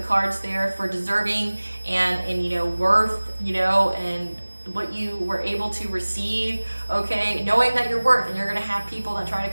cards there for deserving and worth, and what you were able to receive, okay, knowing that you're worth, and you're going to have people that try to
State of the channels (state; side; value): inverted; both; correlation -1.00